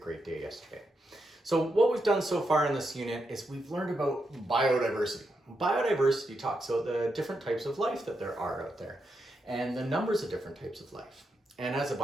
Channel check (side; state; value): both; normal; correlation 0.84